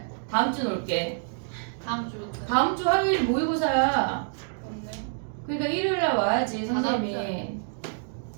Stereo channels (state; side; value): silent; left; digital silence